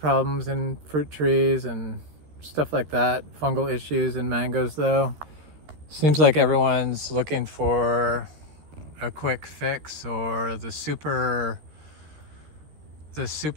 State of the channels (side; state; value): left; late; 13 ms